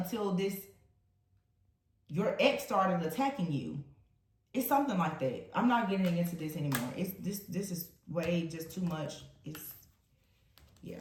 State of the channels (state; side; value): identical; both; correlation 1.00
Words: your ex started attacking you. It's something like that. I'm not getting into this anymore. This is way just too much.